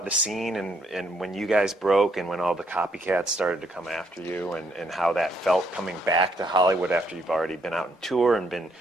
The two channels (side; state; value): both; normal; correlation 0.71